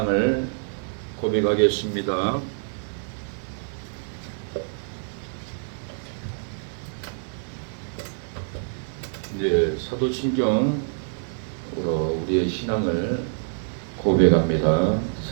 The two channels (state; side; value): silent; left; 56 dB below the other